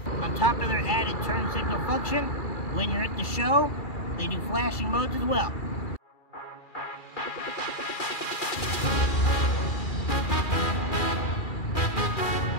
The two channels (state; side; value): late; right; 2.4 ms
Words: On top of their added turn signal function, when you're at the show, they do flashing modes as well.